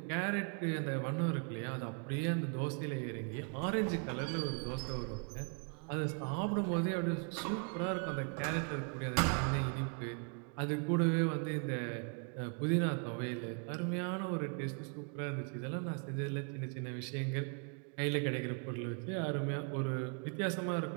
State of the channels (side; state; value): left; quieter; 39.7 dB